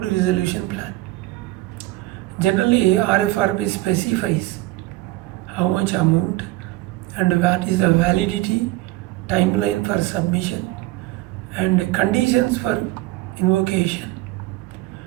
resolution plan. Generally, RFRP specifies how much amount and what is the validity, timeline for submission, and conditions for invocation,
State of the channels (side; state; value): left; quieter; 18.3 dB